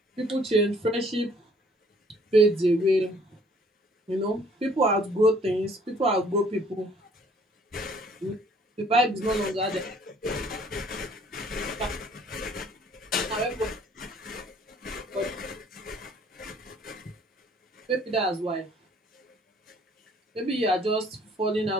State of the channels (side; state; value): both; normal; correlation 0.59